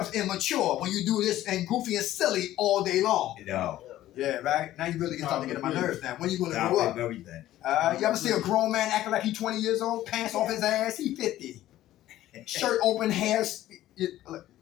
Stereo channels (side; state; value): right; quieter; 14.1 dB